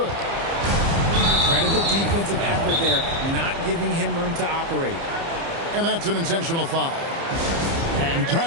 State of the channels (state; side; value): late; left; 30 ms